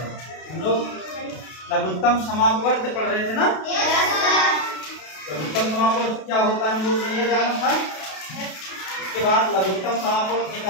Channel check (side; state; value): right; late; 32 ms